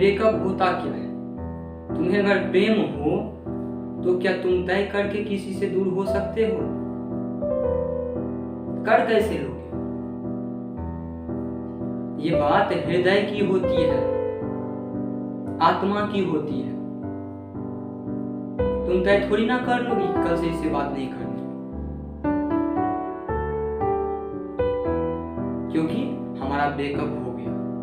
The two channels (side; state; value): both; identical; correlation 1.00